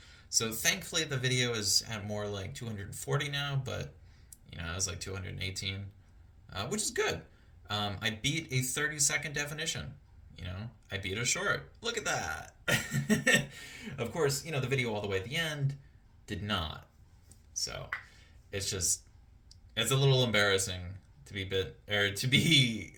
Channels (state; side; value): identical; both; correlation 1.00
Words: So thankfully the video is at more like 240 now, but I was like 218, which is good. I beat a 30-second definition. I beat a short. Look at that. Of course, the video all the way at the end did not. So it's a little embarrassing to be